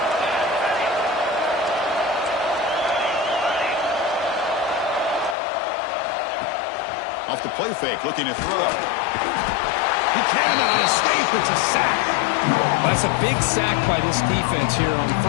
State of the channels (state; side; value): drops out; right; at 5.4 s